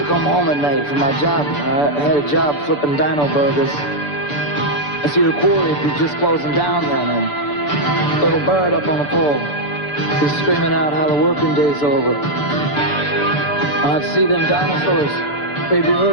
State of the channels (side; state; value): right; late; 6.9 ms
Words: come home at night from my job. I had a job flipping dino burgers. I see the quarry would be just closing down then, and little bird up on the pole. He's screaming out how the working day's over. I'd see them dinosaurs. They'd be